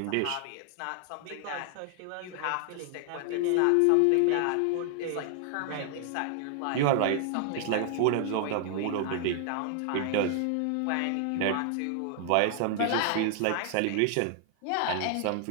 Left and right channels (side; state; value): both; different; correlation 0.00